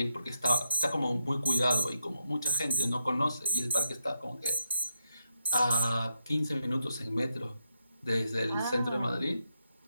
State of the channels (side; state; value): both; inverted; correlation -0.83